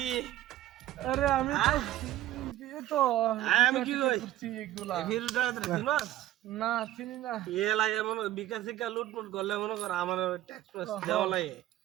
আরে আমি তো আমি কি কই এগুলা ফিরুটা চিনো না চিনি না ইয়ে লাগে মনে বিকাশ শিকা লুটপুট করলে মনে কর আমার ট্যাক্স প্যাক্স দেওয়া লাগে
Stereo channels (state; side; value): quieter; left; 14.3 dB